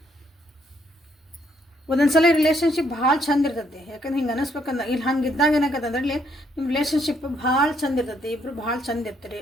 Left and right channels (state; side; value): normal; both; correlation 0.71